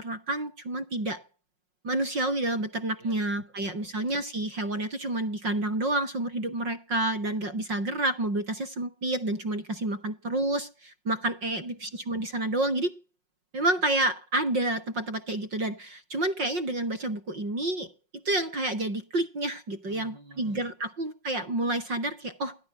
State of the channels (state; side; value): late; left; 5.5 ms